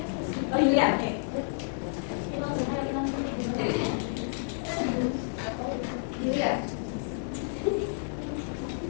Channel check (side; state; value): right; silent; digital silence